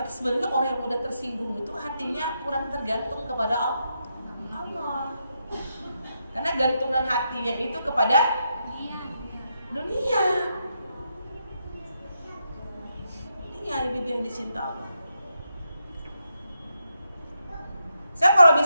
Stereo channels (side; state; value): both; inverted; correlation -0.82